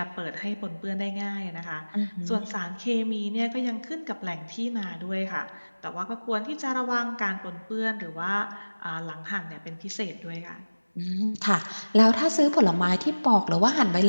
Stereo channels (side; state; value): both; inverted; correlation -1.00